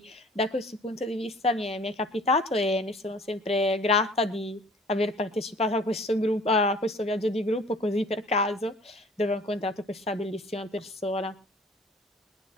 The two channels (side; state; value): both; normal; correlation 0.51